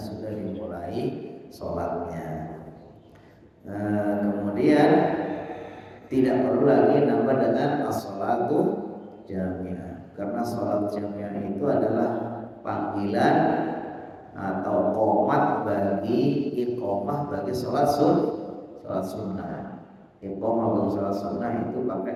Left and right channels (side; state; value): both; identical; correlation 1.00